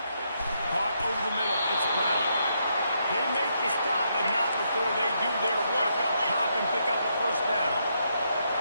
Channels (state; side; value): inverted; both; correlation -0.77